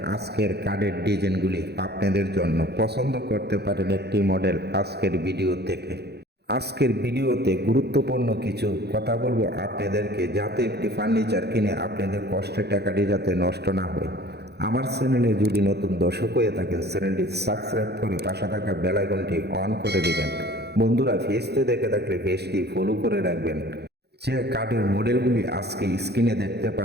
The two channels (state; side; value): late; left; 0.48 ms